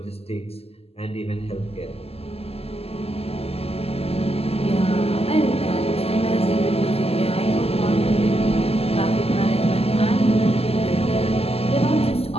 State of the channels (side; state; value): right; late; 0.29 ms